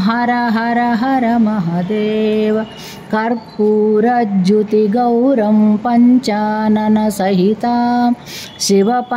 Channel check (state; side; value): identical; both; correlation 1.00